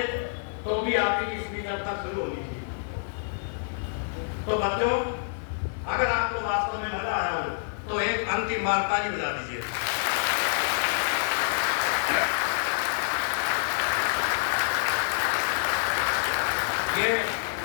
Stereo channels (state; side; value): silent; right; digital silence